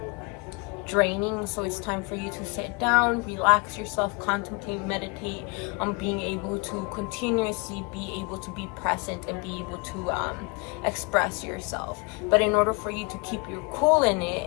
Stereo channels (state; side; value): quieter; right; 30.9 dB